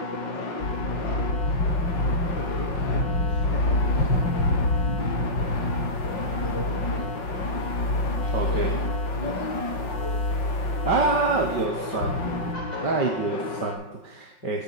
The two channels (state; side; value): late; right; 5.5 ms